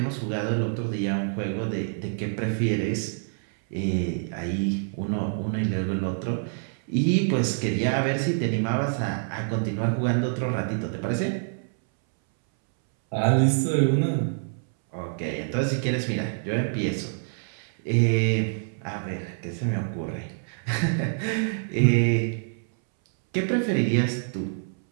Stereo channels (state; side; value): silent; left; 61 dB below the other